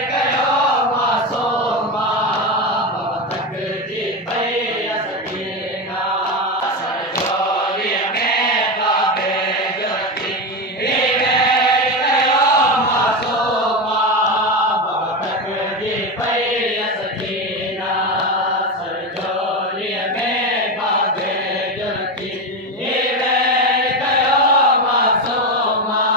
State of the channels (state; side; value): normal; both; correlation 0.16